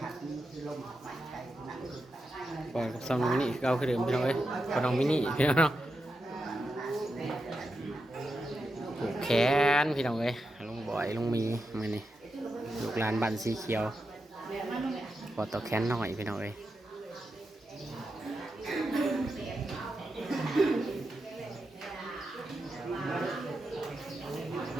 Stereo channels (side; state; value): both; normal; correlation 0.87